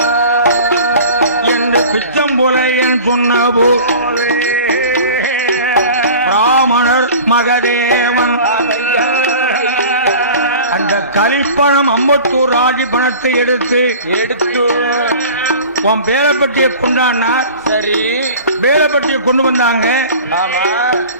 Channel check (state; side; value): inverted; both; correlation -0.40